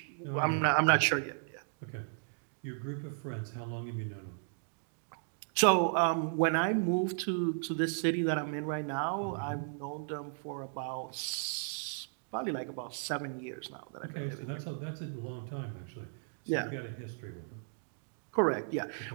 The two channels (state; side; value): silent; left; digital silence